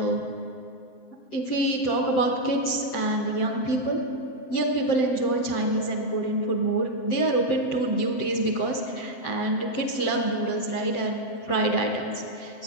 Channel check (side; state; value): right; late; 7.7 ms